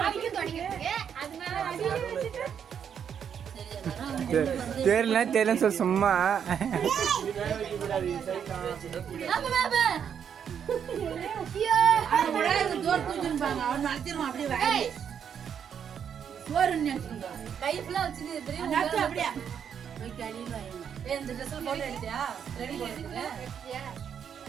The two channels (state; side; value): quieter; left; 8.0 dB